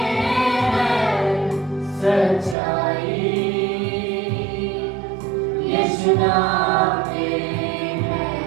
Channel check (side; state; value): left; drops out; at 2.6 s